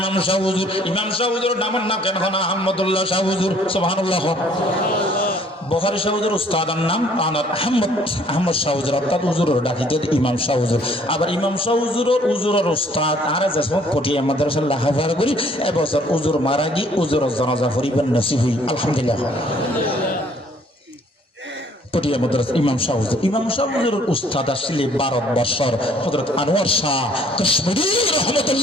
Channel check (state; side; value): normal; both; correlation 0.60